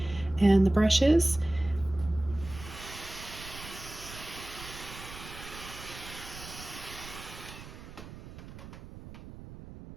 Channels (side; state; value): right; noise; rumble, 14 dB below the sound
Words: and the brushes.